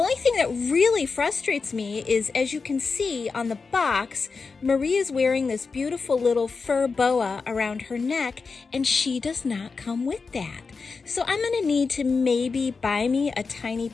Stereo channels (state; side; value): quieter; right; 4.7 dB